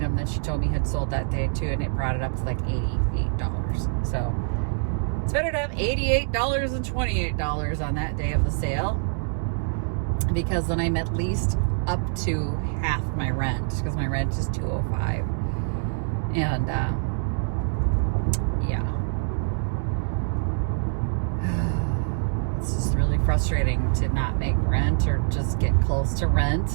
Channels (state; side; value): silent; left; digital silence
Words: that she told me had sold that day too, and it brought it up to like $88. So it's better to have $88 than $28 on that day of the sale, because then I'm at least up to half my rent, because my rent is $205. And yeah, it's just really frustrating to not make rent or just get close to